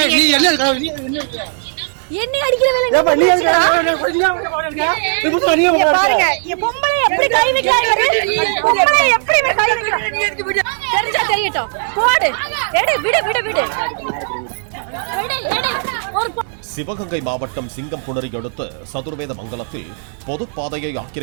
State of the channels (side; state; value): left; silent; 65 dB below the other